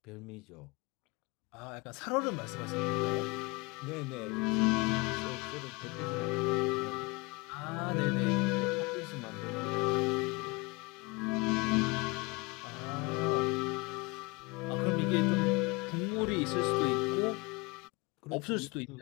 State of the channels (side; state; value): right; quieter; 26.4 dB